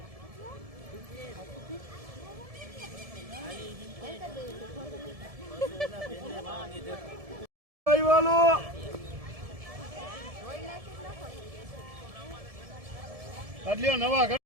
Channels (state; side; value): late; left; 1.7 ms